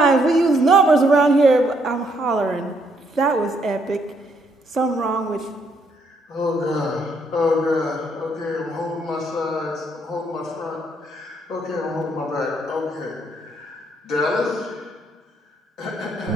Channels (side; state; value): both; normal; correlation 0.72